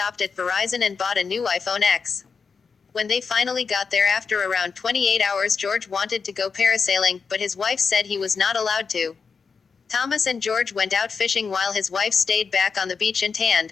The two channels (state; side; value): quieter; right; 5.4 dB